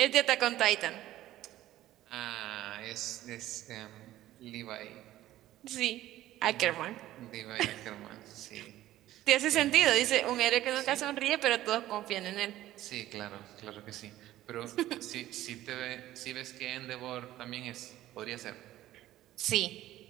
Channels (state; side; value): quieter; left; 14.5 dB